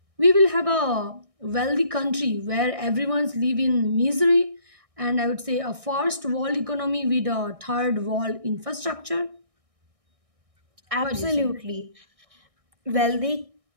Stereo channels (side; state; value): left; late; 1.6 ms